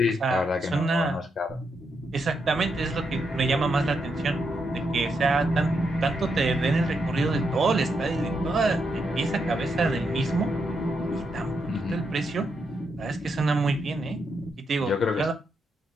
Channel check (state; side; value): normal; both; correlation 0.81